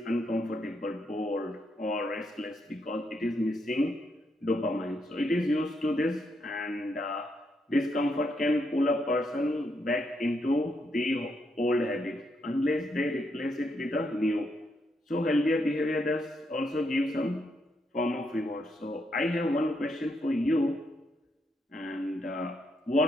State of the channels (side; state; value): both; normal; correlation 0.78